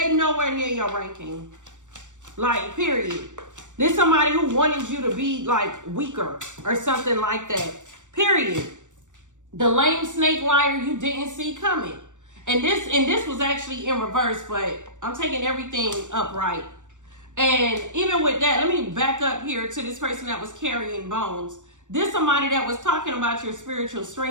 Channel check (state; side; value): late; left; 0.85 ms